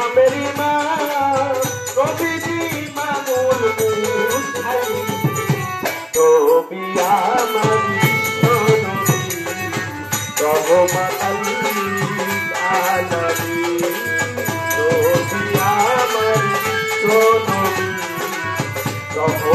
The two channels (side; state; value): both; identical; correlation 1.00